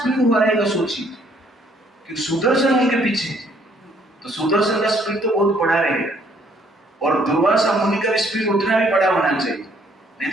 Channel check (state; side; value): normal; both; correlation 0.64